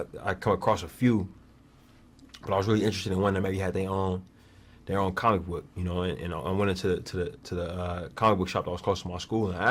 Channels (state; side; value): identical; both; correlation 1.00